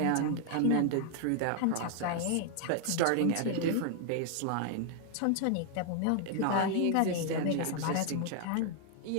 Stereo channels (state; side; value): different; both; correlation 0.00